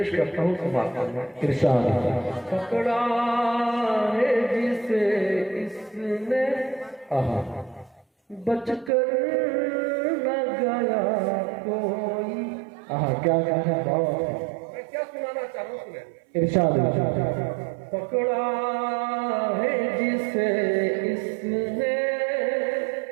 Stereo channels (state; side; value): drops out; left; at 8.9 s